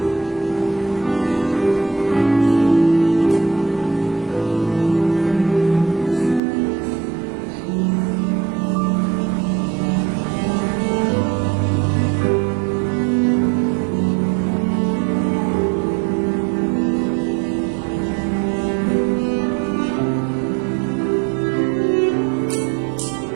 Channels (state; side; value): drops out; left; at 6.4 s